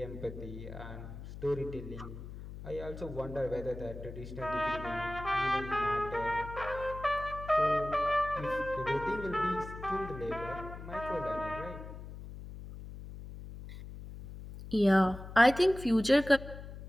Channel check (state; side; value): noise; left; hum, 12 dB below the sound